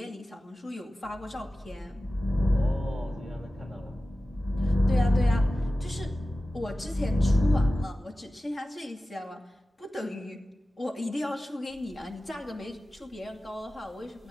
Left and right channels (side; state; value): both; normal; correlation 0.96